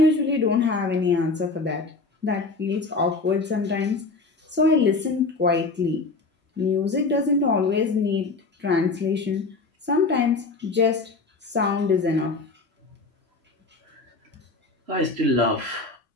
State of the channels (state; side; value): quieter; right; 3.8 dB